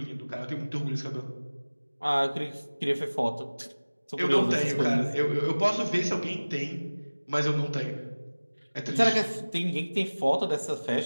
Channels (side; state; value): both; inverted; correlation -1.00